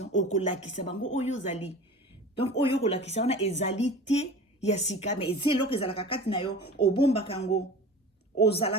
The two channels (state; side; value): normal; both; correlation 0.38